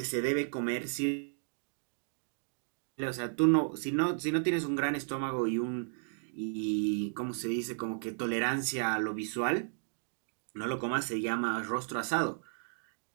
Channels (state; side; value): silent; left; digital silence